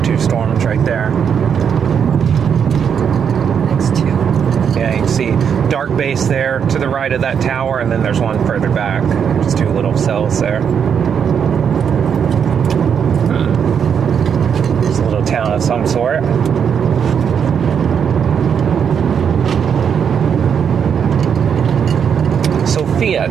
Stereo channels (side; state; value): left; quieter; 7.5 dB